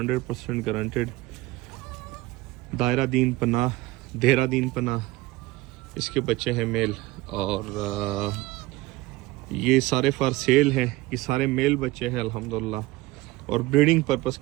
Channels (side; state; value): left; quieter; 19.3 dB